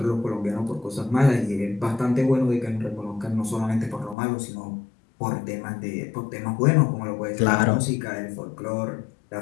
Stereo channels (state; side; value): drops out; right; at 4.2 s